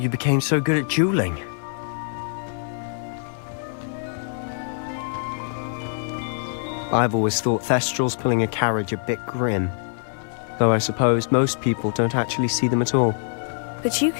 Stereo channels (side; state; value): right; silent; 57 dB below the other